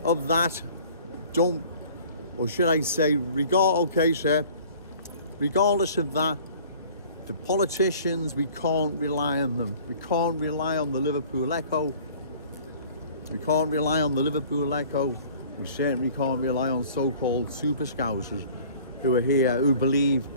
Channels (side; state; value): both; inverted; correlation -0.49